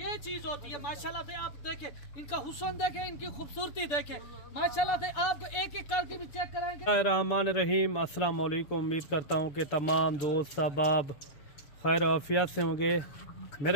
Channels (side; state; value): right; late; 6.9 ms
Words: चीज होती है माशाल्लाह से। आप देखें इनका हुस्न, देखें इनकी खूबसूरती, देखें माशाल्लाह से। आपको एक एक करके भी चेक कराएंगे। रहमान रहीम, अस्सलाम वालेकुम। उम्मीद करता हूँ कि तमाम दोस्त अहबाब खैर आफियत से होंगे।